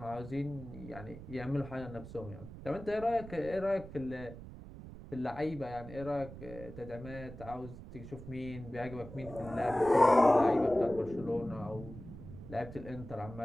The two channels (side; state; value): right; noise; rumble, 13 dB below the sound